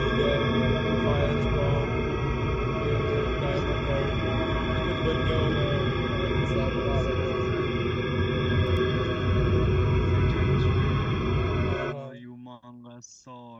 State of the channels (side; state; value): both; identical; correlation 1.00